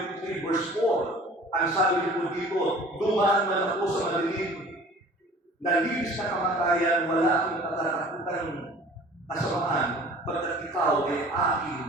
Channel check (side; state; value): both; normal; correlation 0.46